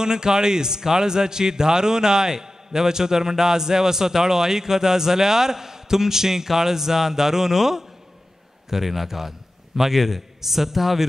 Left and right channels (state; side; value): normal; both; correlation 0.94